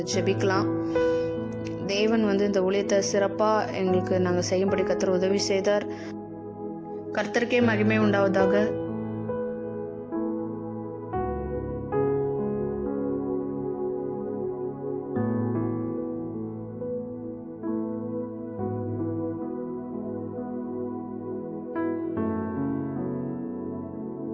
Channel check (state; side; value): identical; both; correlation 1.00